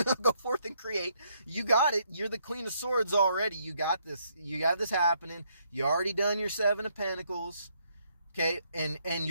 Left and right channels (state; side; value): inverted; both; correlation -0.72